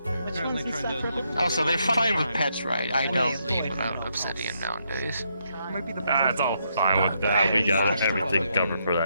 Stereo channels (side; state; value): both; inverted; correlation -0.77